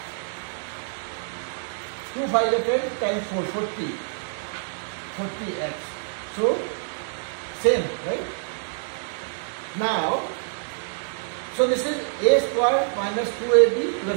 2 5 is 10 times 4, 40. 40x. So, same, right? Now, so this is a square minus 2ab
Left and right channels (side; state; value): left; silent; digital silence